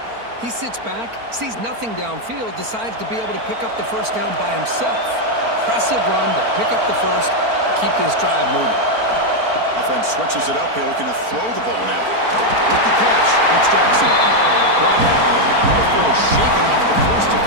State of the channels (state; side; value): late; left; 4.4 ms